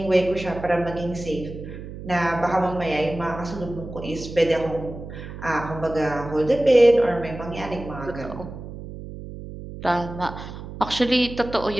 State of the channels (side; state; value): right; noise; hum, 11 dB below the sound